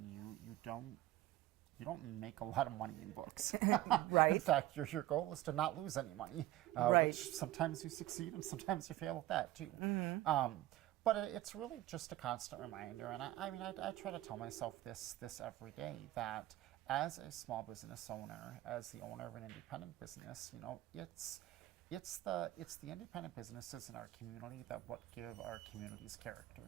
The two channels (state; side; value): quieter; left; 15.6 dB